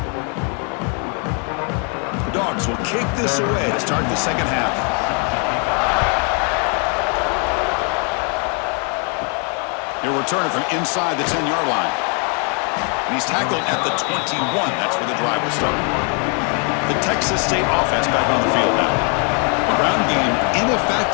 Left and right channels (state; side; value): quieter; right; 37.8 dB